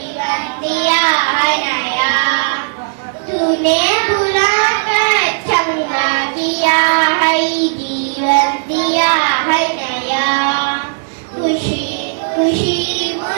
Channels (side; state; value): left; silent; digital silence